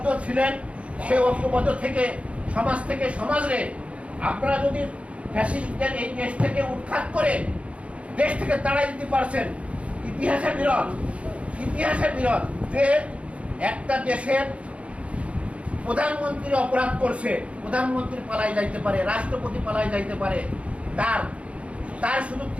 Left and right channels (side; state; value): left; late; 0.062 ms